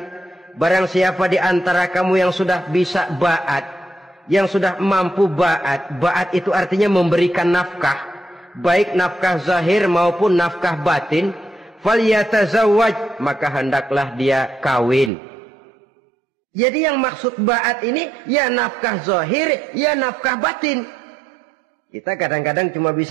barang siapa di antara kamu yang sudah bisa ba'at, yang sudah mampu ba'at. Ba'at itu artinya memberikan nafkah. Baik nafkah zahir maupun nafkah batin, falyatazawwaj, maka hendaklah dia kawin. Jadi yang maksud ba'at ini ya nafkah zahir, ya nafkah batin. Kita kadang-kadang cuma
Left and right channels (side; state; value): left; drops out; at 15.1 s